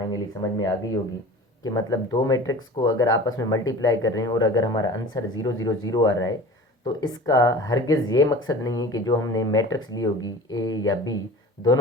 समझ में आ गई होगी कि मतलब दो मैट्रिक्स को अगर आपस में मल्टीप्लाई कर रहे हैं और अगर हमारा आंसर 0 0 0 आ रहा है तो इसका हरगिज़ ये मकसद नहीं है कि जो हमने मैट्रिक्स ली होगी ए या बी,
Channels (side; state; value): both; normal; correlation 0.39